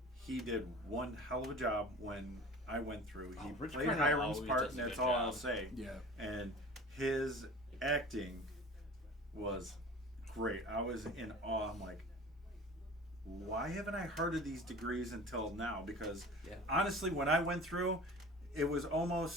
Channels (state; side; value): normal; both; correlation 0.40